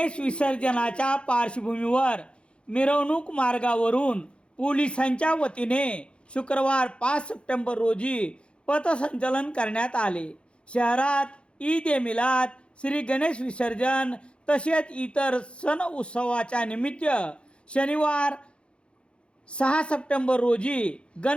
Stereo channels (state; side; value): late; right; 0.057 ms